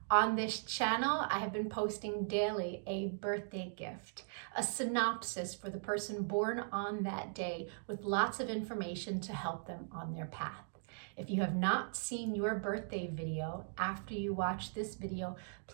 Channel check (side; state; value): left; silent; digital silence